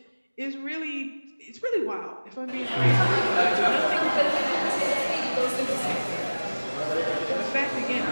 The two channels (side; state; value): both; inverted; correlation -1.00